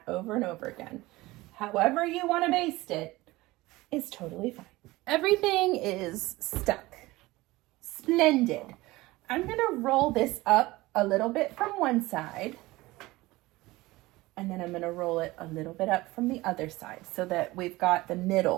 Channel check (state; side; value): quieter; left; 19.8 dB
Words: over and over again. However you want to baste it is totally fine. Everything is stuck. Splendid. I'm going to roll this up a little bit from one side. And then I'm going to roll it a little bit up from the other side so that we've got the